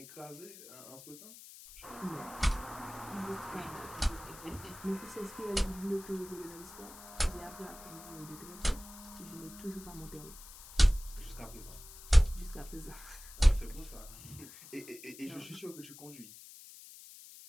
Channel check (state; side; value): noise; left; hiss, 16 dB below the sound